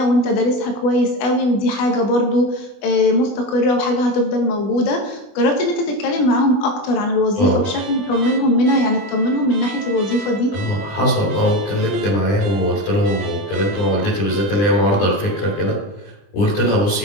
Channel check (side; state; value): right; late; 20 ms